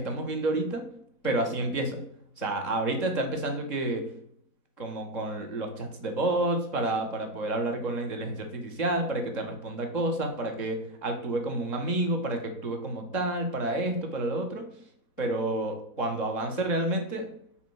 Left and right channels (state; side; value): late; right; 3.7 ms